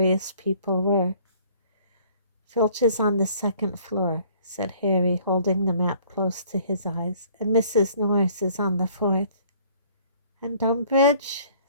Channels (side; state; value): both; inverted; correlation -0.57